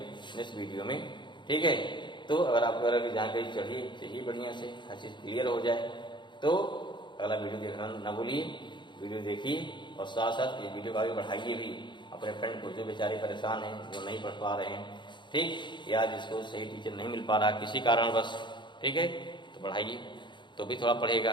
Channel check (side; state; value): right; late; 0.23 ms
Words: नेक्स्ट वीडियो में, ठीक है। तो अगर आपको अगर जानकारी चाहिए बढ़िया से, हर चीज क्लियर हो जाए, तो अगला वीडियो देखना ना भूलिए, वीडियो देखिए और साथ साथ ये वीडियो को आगे बढ़ाइए भी अपने फ्रेंड को, जो बेचारे परेशान हैं, जो नहीं पढ़ पा रहे हैं, ठीक, या जिसको सही टीचर नहीं मिल पा रहा किसी कारण बस, ठीक है, तो बढ़ाइए, तो भी थोड़ा